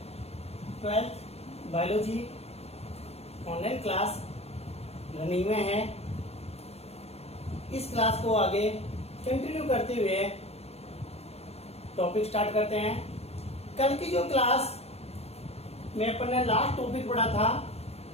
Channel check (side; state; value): right; late; 0.30 ms